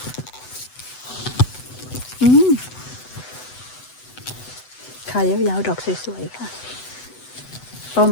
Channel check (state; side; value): late; right; 8.0 ms